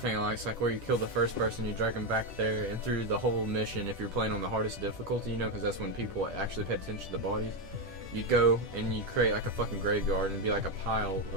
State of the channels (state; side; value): late; left; 10 ms